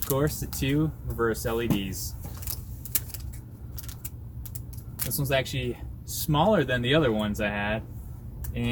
course, the two reverse LEDs. This one's actually smaller than the other ones I had,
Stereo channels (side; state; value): both; identical; correlation 1.00